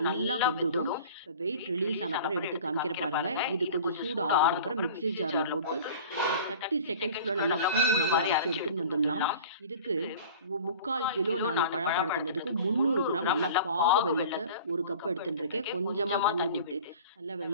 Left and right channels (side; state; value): both; inverted; correlation -0.41